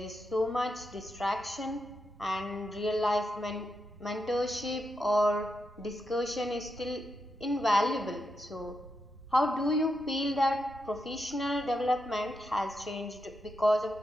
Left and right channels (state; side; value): normal; both; correlation 0.85